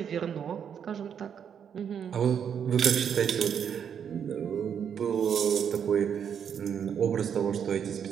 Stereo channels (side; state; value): left; quieter; 8.0 dB